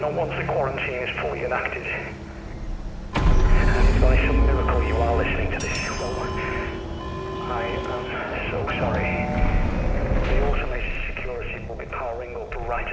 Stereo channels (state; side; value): identical; both; correlation 1.00